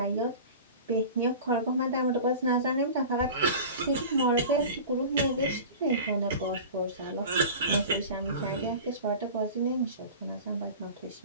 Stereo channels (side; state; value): both; inverted; correlation -0.36